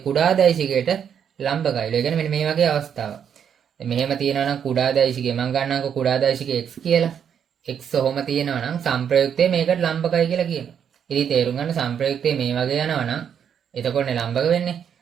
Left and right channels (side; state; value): left; quieter; 8.1 dB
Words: දෛශිකයට ලම්බකයිලු. ඒ කියන්නේ මෙන්න මේ වගේ අවස්ථාවක්. මෙහෙම තියෙනවා නම් කුඩා දෛශිකය මම ගන්නම්කෝ කුඩා දෛශිකය x කියලා. x ඔහොම තියෙනවා නම් සංප්‍රයුක්තයේ මේකට ලම්බකයි කියලා කියනවා. ඉතින් තේරුම් ගන්න සංප්‍රයුක්තයේ මේ වගේ යනවා නම් එතකොටනේ ලම්බක වෙන්නේ.